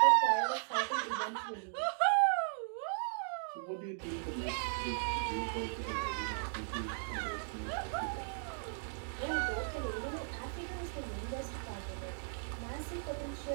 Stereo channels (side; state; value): left; silent; digital silence